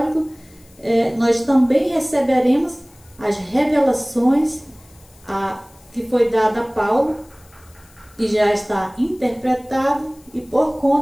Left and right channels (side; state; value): left; noise; hiss, 28 dB below the sound